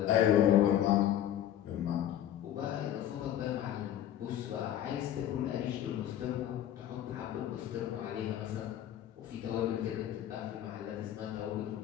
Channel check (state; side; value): quieter; right; 11.4 dB